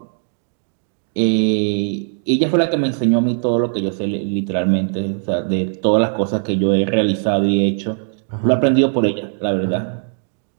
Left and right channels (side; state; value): left; silent; 59 dB below the other